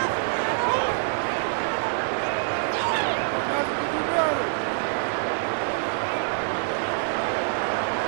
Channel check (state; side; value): silent; left; 61 dB below the other